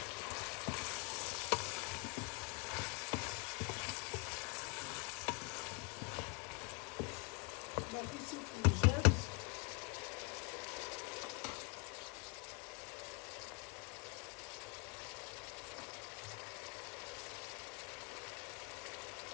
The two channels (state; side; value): quieter; right; 33.4 dB